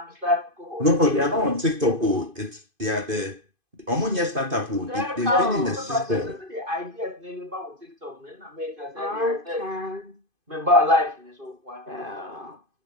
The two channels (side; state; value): left; late; 2.5 ms